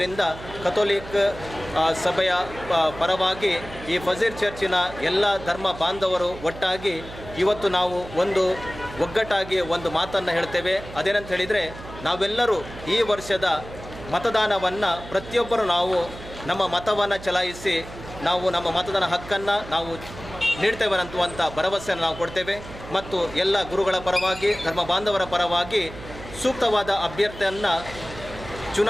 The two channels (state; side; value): noise; right; hum, 14 dB below the sound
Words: ಕಥೋಲಿಕ್ ಸಭೆಯ ಪರವಾಗಿ ಈ ಫಜೀರ್ ಚರ್ಚಿನ ಎಲ್ಲ ಧರ್ಮ ಬಾಂಧವರು ಒಟ್ಟಾಗಿ ಇವತ್ತು ನಾವು ಒಂದು ಒಗ್ಗಟ್ಟಾಗಿ ಒಂದು ಮಾತನ್ನು ಹೇಳ್ತೇವೆ. ಅದೇನಂತ ಹೇಳಿದರೆ, ನಾವೆಲ್ಲರೂ ಈ ವರ್ಷದ ಮತದಾನವನ್ನು ಪ್ರತಿಯೊಬ್ಬರು ನಾವು ನಮ್ಮ ಮತವನ್ನು ಚಲಾಯಿಸಿ ನಾವು ನಮ್ಮ ಮತದಾನ ಹಕ್ಕನ್ನು ನಾವು ನೀಡ್ತೇವೆ ಅನ್ನುವಂಥ ಭರವಸೆಯನ್ನು ನಾವು ಕೊಡ್ತೇವೆ. ಮತ್ತು ಎಲ್ಲ ಗುರುಗಳ ಪರವಾಗಿ ಧರ್ಮ ಬಾಂಧವರ ಪರವಾಗಿ ಸೂಕ್ತವಾದ ಅಭ್ಯರ್ಥಿಯನ್ನು